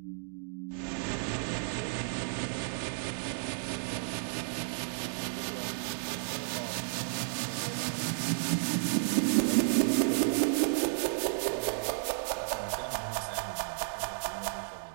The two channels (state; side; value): silent; left; digital silence